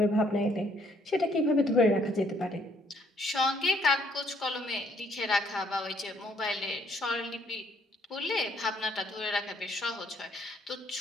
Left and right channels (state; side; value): normal; both; correlation 0.66